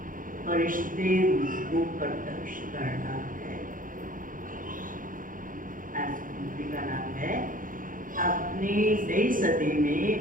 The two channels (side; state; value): left; late; 0.39 ms